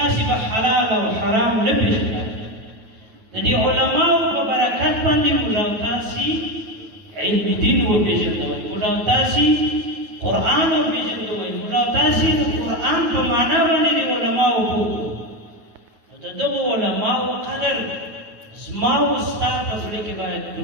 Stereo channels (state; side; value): late; left; 9.5 ms